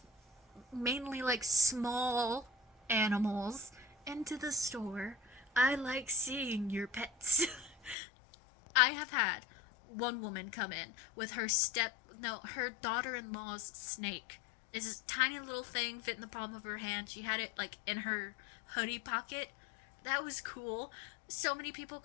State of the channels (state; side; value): drops out; right; at 8.0 s